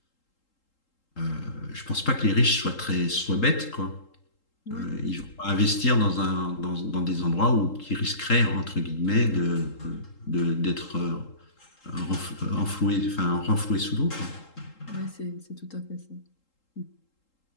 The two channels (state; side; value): late; right; 3.8 ms